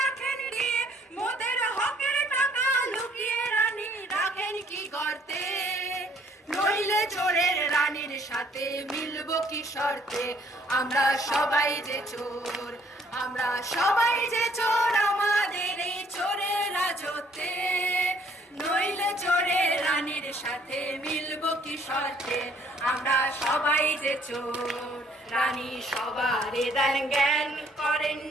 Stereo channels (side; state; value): both; normal; correlation 0.62